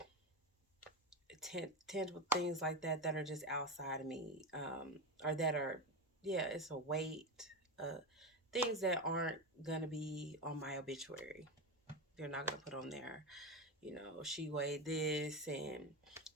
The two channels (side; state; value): both; normal; correlation 0.18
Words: tangible things like that that are just outside of me, or that are, yeah, it's a weight, uh, things that aren't gonna be on my obituary. They're not gonna put on there. She weighed this and